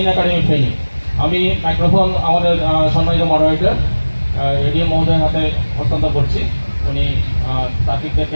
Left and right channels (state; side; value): inverted; both; correlation -1.00